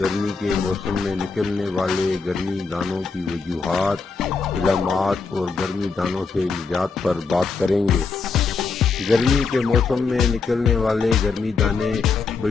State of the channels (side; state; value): right; quieter; 4.7 dB